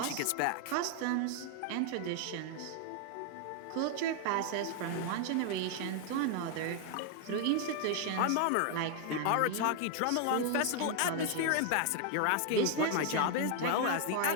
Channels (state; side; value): different; both; correlation 0.00